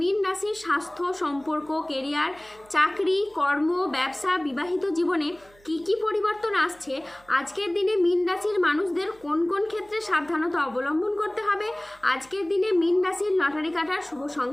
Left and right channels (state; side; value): noise; right; hum, 28 dB below the sound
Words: রাশির স্বাস্থ্য, সম্পর্ক, কেরিয়ার, চাকরি, কর্ম, ব্যবসা, বিবাহিত জীবনে কি কি পরিবর্তন আসছে, আজকের দিনে মীন রাশির মানুষদের কোন কোন ক্ষেত্রে সাবধানতা অবলম্বন করতে হবে, আজকের দিনে মীন রাশির লটারি কাটার শুভ